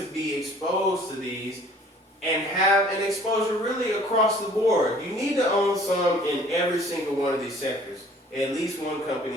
be exposed to these and have an exposure really across the board. You need to own some in every single one of these sectors, at least one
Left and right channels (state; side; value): normal; both; correlation 0.53